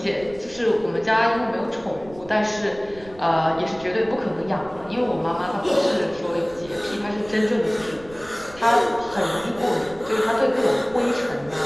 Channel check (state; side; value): noise; right; rumble, 21 dB below the sound